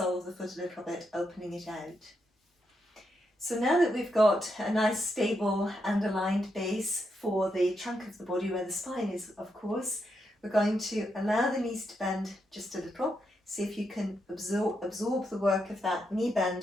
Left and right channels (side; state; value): both; normal; correlation 0.82